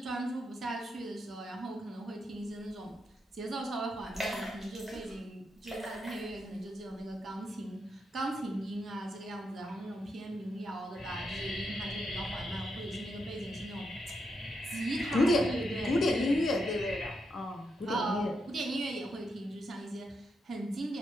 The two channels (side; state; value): both; normal; correlation 0.82